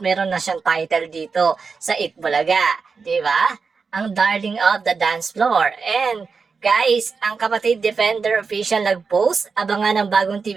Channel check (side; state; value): left; quieter; 5.0 dB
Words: meron na siyang title dito sa Eat Bulaga. Diba? Ang darling of the dance floor. And guys, ang kapatid Defender official nag-post, abangan ng bagong